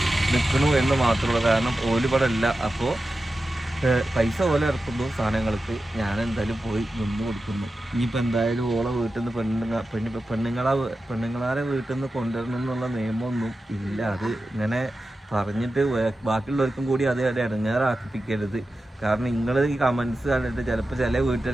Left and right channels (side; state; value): both; normal; correlation 0.92